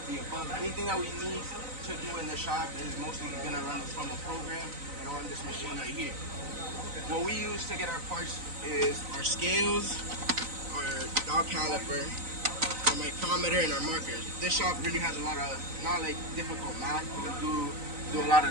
the above. Anything that we need to do in the shop is mostly going to run from a program and on this machine right here. What we use to get our parts is our scales, our dial caliper, our micrometer, and our markers. This shop really has a lot of, not like difficult math, we do a lot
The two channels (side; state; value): left; late; 3.9 ms